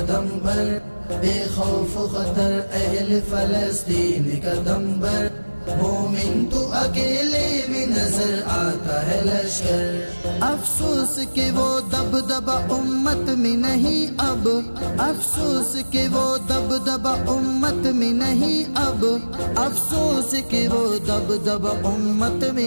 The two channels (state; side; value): inverted; both; correlation -1.00